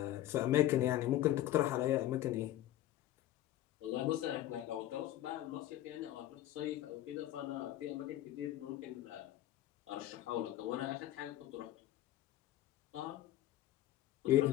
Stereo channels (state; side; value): quieter; right; 13.8 dB